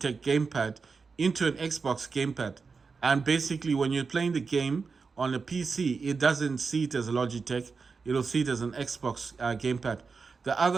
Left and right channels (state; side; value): quieter; left; 4.9 dB